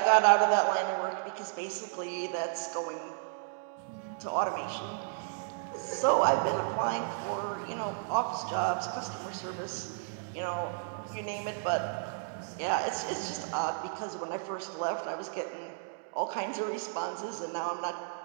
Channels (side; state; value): left; silent; digital silence